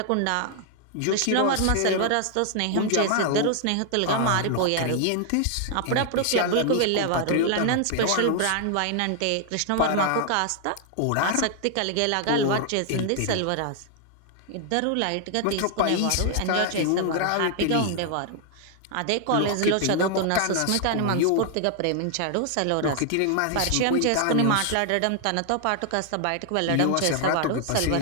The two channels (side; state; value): both; different; correlation 0.00